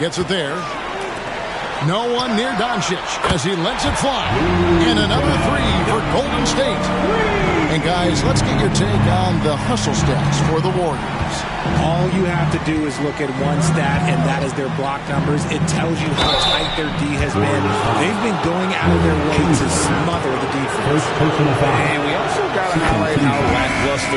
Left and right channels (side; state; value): both; identical; correlation 1.00